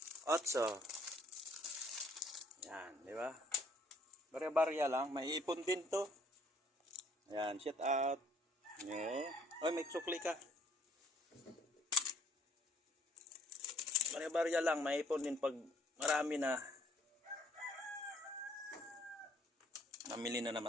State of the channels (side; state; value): both; normal; correlation 0.63